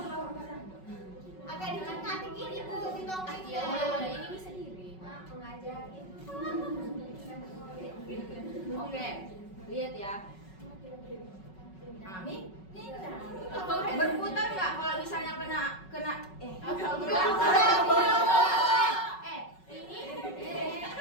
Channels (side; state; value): right; late; 5.4 ms